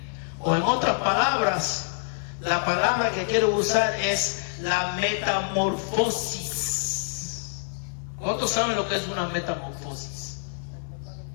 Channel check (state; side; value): silent; right; 61 dB below the other